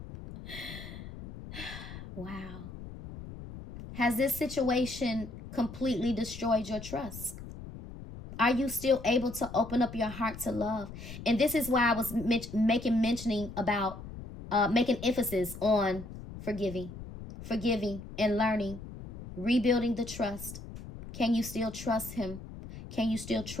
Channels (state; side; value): noise; left; rumble, 12 dB below the sound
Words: Wow. Has this situation completely destroyed your trust? Are you still able to open up your heart to love? And this is why I was making emphasis on forgiving and learning, rebuilding the trust. Can you still trust him? Can you still